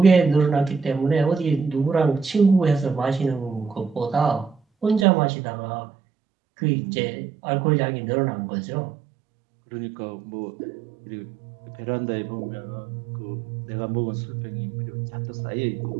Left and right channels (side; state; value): left; drops out; at 5.1 s